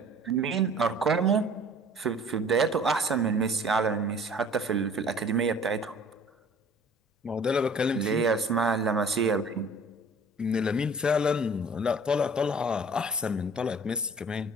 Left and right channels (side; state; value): both; normal; correlation 0.50